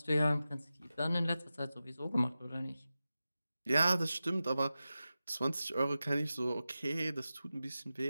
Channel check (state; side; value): inverted; both; correlation -0.93